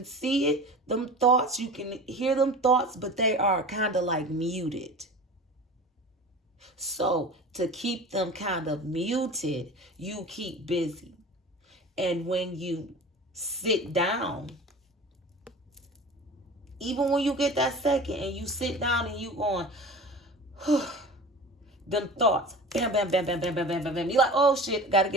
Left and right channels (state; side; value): normal; both; correlation 0.36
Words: see it, them thoughts, you can hear them thoughts, but they are kind of like muted. So to keep them kind of muted, you keep busy. And when you sit down, even when you get that second and you sit down and you going, them thoughts, bam, bam, bam, bam, bam, bam, bam, bam, bam. You're like, oh shit, gotta